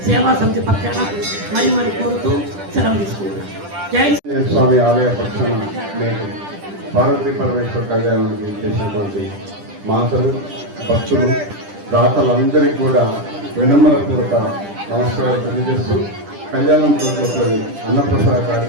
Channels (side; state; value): left; late; 10 ms